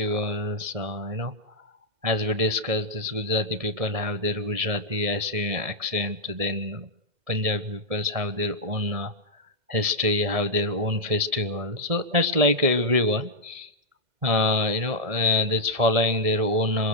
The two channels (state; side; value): late; left; 2.0 ms